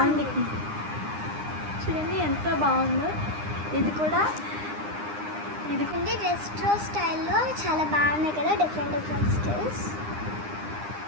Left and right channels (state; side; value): late; left; 9.8 ms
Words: చూడండి ఎంత బాగుందో. ఇది కూడా రెస్ట్రో స్టైల్లో చాలా బాగున్నాయి కదా, డిఫరెంట్ స్టైల్స్.